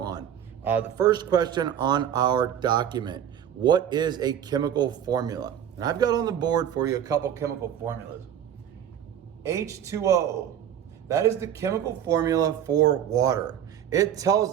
on. The first question on our document, what is a chemical formula? And I've got on the board for you a couple chemical formulas. H2O, that is the chemical formula for water. It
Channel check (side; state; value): left; quieter; 9.6 dB